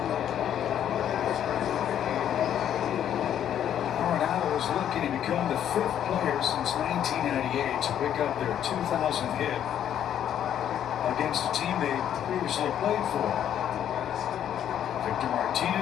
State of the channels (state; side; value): quieter; right; 10.1 dB